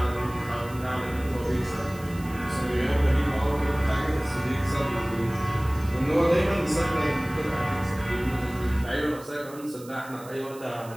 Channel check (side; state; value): right; noise; hiss, 20 dB below the sound